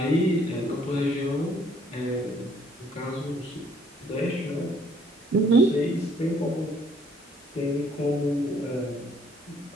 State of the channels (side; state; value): both; normal; correlation 0.63